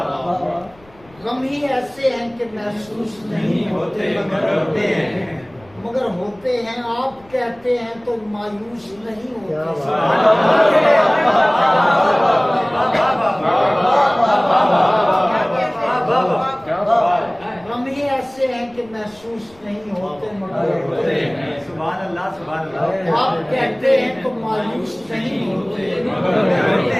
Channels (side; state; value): left; noise; rumble, 27 dB below the sound